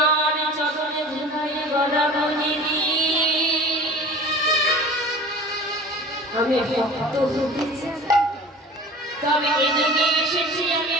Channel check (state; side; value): normal; both; correlation 0.41